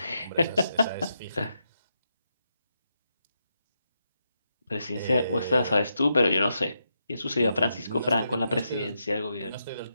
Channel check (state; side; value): inverted; both; correlation -0.84